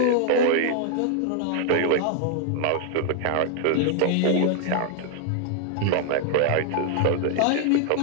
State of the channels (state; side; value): different; both; correlation 0.00